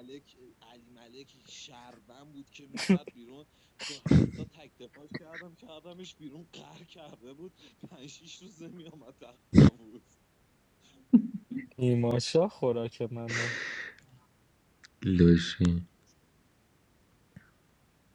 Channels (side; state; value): both; identical; correlation 1.00